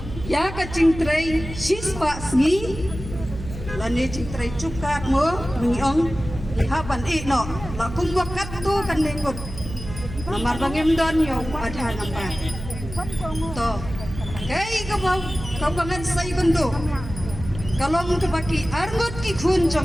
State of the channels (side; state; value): right; noise; hum, 10 dB below the sound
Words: ya ka chingtrei sispa sngi lani chingtrei chukat mo ngiong haban no la kum wakat tu kan lengkot namar bangem don yo adha nambar to kai ka bau ka bangan sai kondo kalong ka baki arngot ki khun